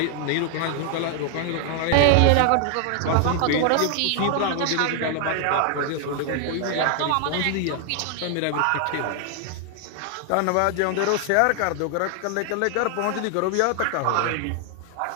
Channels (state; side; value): different; both; correlation 0.00